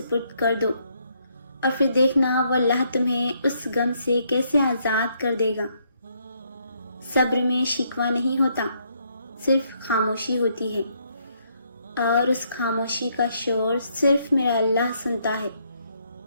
کر دو اور پھر دیکھنا وہ اللہ تمہیں اس غم سے کیسے آزاد کر دے گا۔ صبر میں شکوہ نہیں ہوتا، صرف خاموشی ہوتی ہے، اور اس خاموشی کا شور صرف میرا اللہ سنتا ہے۔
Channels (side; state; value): both; inverted; correlation -0.72